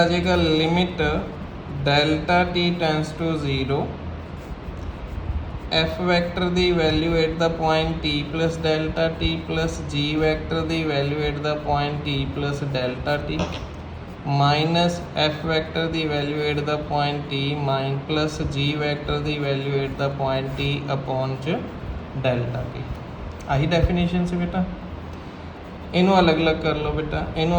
जाएगा limit delta T tends to 0, F vector दी value at the point T plus delta T plus G vector दी value at the point T plus delta T minus F vector दी value at the point T mine plus G vector दी value at the point T upon च delta T. आही definition से बेटा। इनू अलग अलग कर लो बेटा। इनू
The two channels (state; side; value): identical; both; correlation 1.00